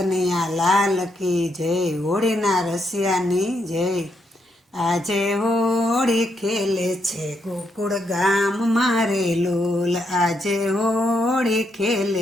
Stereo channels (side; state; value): both; normal; correlation 0.78